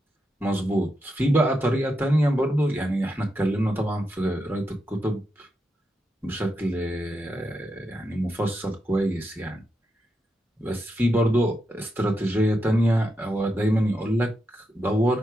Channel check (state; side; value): normal; both; correlation 0.85